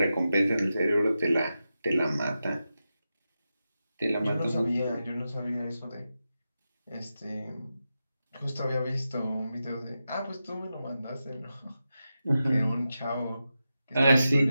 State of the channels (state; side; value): inverted; both; correlation -0.90